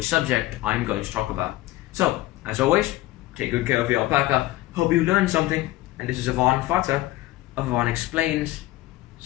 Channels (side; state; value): right; quieter; 17.0 dB